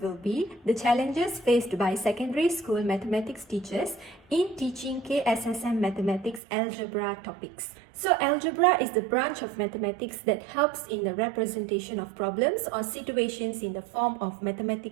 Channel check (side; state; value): left; drops out; at 6.4 s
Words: be The Challenges Faced by Secondary School Mathematics Teachers in Teaching KSSM Mathematics Algebra Topics. So algebra is the branch of mathematics that helps in the representation of problems or situations in the form of